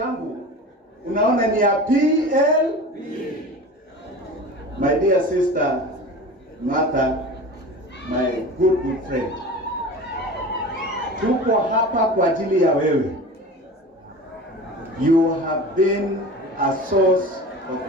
unaona ni ya PLP. My dear sister Martha, my good friend, tuko hapa kwa ajili ya wewe. You have been a source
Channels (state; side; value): normal; both; correlation 0.35